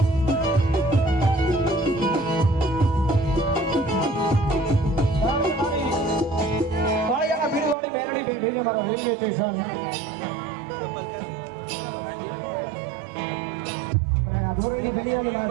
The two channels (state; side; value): drops out; left; at 7.8 s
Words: રેલવે સ્ટેશન ધોરણી દુનિયાની માં